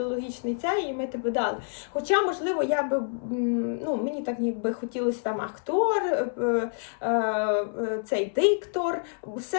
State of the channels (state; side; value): silent; right; 60 dB below the other